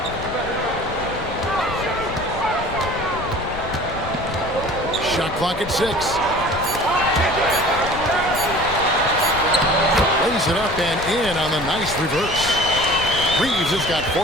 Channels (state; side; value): noise; left; rumble, 11 dB below the sound